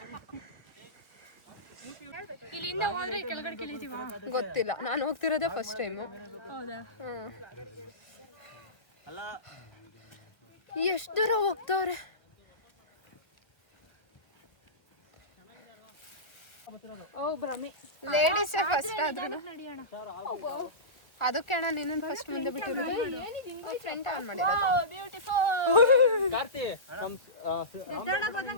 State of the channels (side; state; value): right; late; 1.2 ms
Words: ಇಲ್ಲಿಂದ ಹೋದ್ರೆ ಕೆಳಗಡೆ ಕೆಳಿತೀವ? ಗೊತ್ತಿಲ್ಲ, ನಾನು ಹೋಗ್ತಿರೋದೇ ಫಸ್ಟ್ ಟೈಮು. ಹೌದಾ? ಎಷ್ಟು ದೂರ ಹೋಗ್ತವ್ರೆ. ಲೇಡೀಸೇ ಫಸ್ಟ್ ಆದ್ರೂ ಅದಕ್ಕೆ ಅಣ್ಣ ನಿನ್ನ ಫಸ್ಟ್ ಮುಂದೆ ಬಿಟ್ಟಿರೋದು. ಫ್ರೆಂಡ್ ಆನ್ ಮಾಡಿರೋದು.